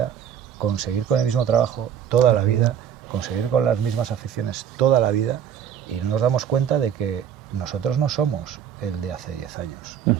conseguir con el mismo trabajo toda la vida, conseguir con las mismas aficiones toda la vida, y no nos damos cuenta de que nosotros no somos el de hace 10 años.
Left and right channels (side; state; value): left; quieter; 8.9 dB